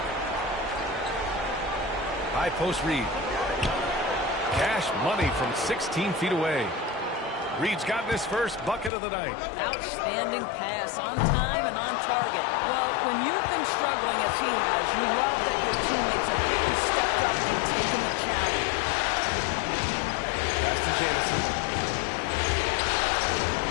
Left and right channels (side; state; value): right; drops out; at 8.9 s